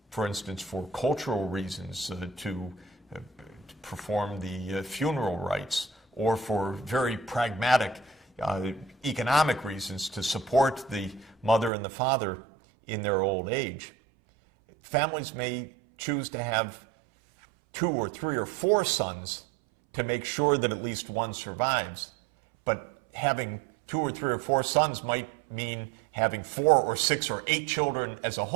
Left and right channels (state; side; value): drops out; left; at 11.7 s